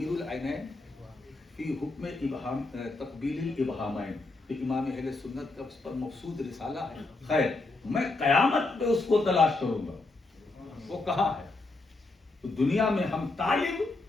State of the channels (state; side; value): quieter; right; 3.2 dB